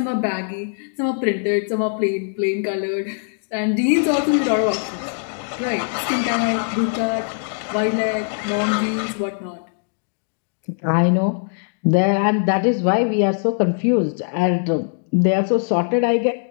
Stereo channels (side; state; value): right; silent; digital silence